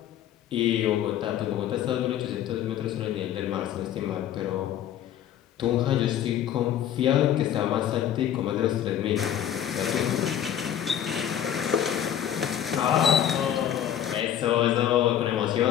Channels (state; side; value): quieter; right; 10.5 dB